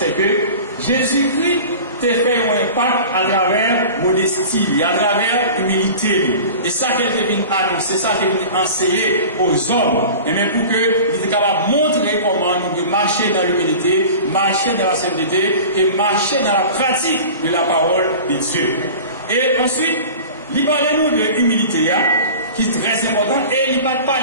que Jésus-Christ t'a fait un impact à travers modestie, à travers humilité. Et ça qu'il est venu annoncer, ça qu'il est venu enseigner aux hommes, et même pour qu'il était capable de montrer comment nous devons marcher dans l'humilité, marcher dans la sainteté et marcher dans la pratique de la parole de Dieu. Et ensuite, il parlait nous de l'humilité, qui est très important, et il ne parle pas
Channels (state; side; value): inverted; both; correlation -0.37